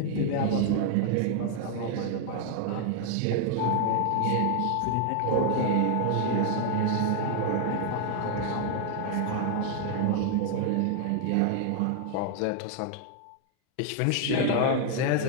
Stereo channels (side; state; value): both; different; correlation 0.00